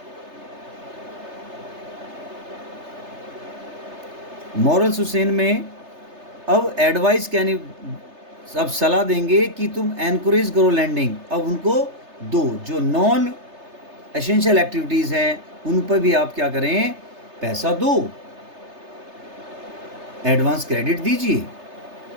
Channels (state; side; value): late; left; 3.3 ms